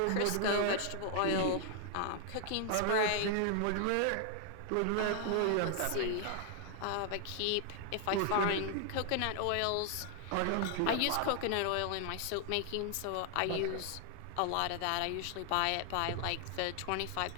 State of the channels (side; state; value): both; different; correlation 0.00